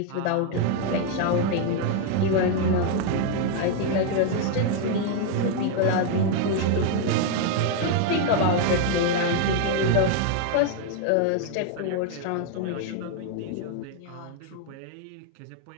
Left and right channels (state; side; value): different; both; correlation 0.00